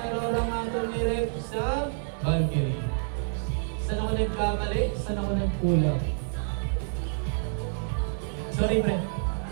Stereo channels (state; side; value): silent; left; 59 dB below the other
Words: Aurora Mato ni Rep sa Valkyrie. Saan ako nagkamali? Saan ako nagkulang? Sorry, pre.